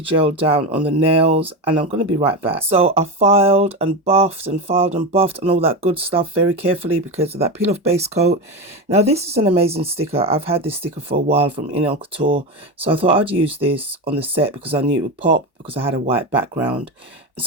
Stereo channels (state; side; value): normal; both; correlation 0.18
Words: Gel down on the nails and I'm going to be right back. So I filed and buffed and all that good stuff very carefully because of that peel off base coat. Now this is an amazing sticker. I've had this sticker for a while from Nail Couture. So I thought I'd use this on the set because I knew it would pop because I had a white background.